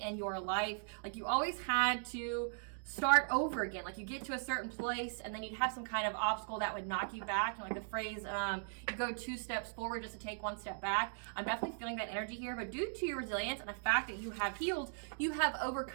in your life. Like you always had to start over again. Like you get to a certain place and then you'd have some kind of obstacle that would knock you back. And like the phrase, you go 2 steps forward just to take 1 step back. I'm definitely feeling that energy here, but due to your resilience and the fact that you have healed, you have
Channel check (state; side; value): silent; left; digital silence